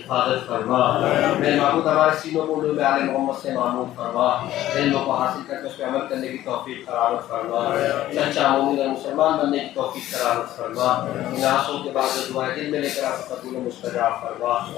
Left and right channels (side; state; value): right; quieter; 14.0 dB